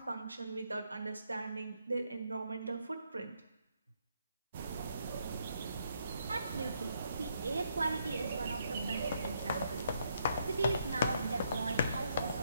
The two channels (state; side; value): inverted; both; correlation -0.74